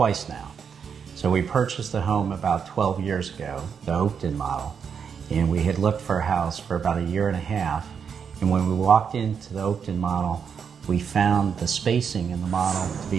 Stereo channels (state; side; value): quieter; left; 6.9 dB